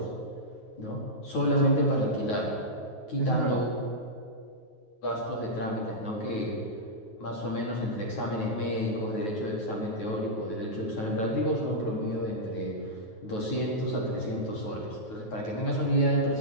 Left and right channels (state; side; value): late; right; 9.4 ms